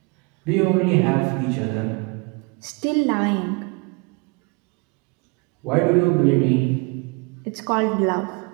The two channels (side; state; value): left; quieter; 29.9 dB